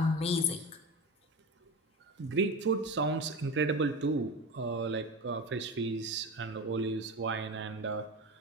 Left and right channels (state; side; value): normal; both; correlation 0.26